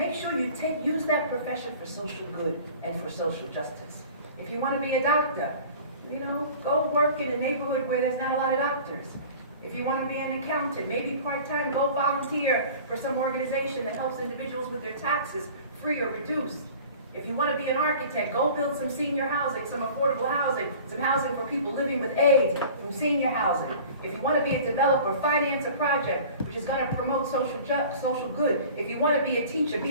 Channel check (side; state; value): both; inverted; correlation -0.43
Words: sure you use that profession for social good and for social justice. If you want to be a doctor, go work in a neighborhood where there's not a lot of doctors. If you want to be an accountant, maybe part-time, go volunteer for some organization that helps individuals with their taxes, free or reduced. If you want to be an architect, go build some senior housing, some affordable housing, some housing for people living with AIDS, some senior housing. If you want to be a developer, finance a project which is going to promote social good. If you want to be a teacher,